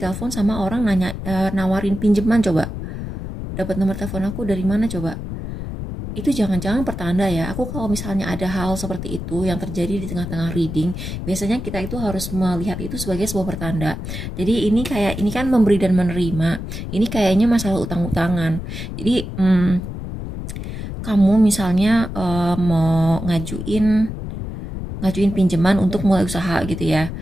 sama orang nawarin pinjaman. Coba dapat nomor telepon aku dari mana coba? Itu jangan-jangan pertanda ya. Aku kalau misalnya ada hal seperti itu yang terjadi di tengah-tengah reading, biasanya kita itu harus melihat itu sebagai sebuah pertanda. Jadi ini kan memberi dan menerima. Ini kayaknya masalah utang-utangan. Jadi kamu misalnya mau ngajuin pinjaman untuk mulai usaha gitu ya.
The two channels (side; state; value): left; noise; rumble, 7 dB below the sound